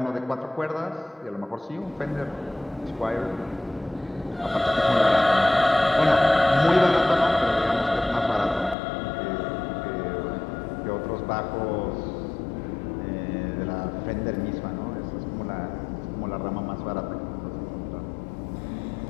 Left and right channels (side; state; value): right; drops out; at 8.8 s